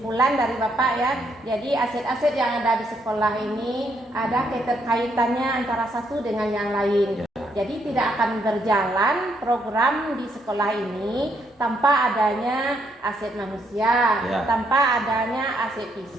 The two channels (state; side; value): normal; both; correlation 0.74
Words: dari Bapak ya. Jadi aset-aset yang ada di sekolah ini ada keterkaitannya antara satu dengan yang lain. Jadi tidak akan berjalan program di sekolah ini tanpa adanya aset manusia, tanpa adanya aset